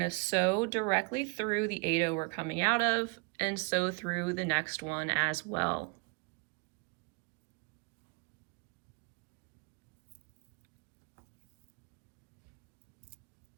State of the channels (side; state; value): left; quieter; 32.6 dB